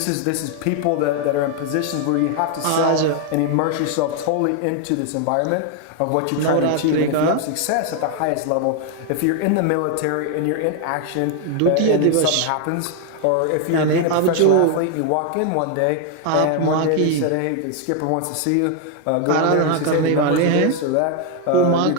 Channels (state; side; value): different; both; correlation 0.00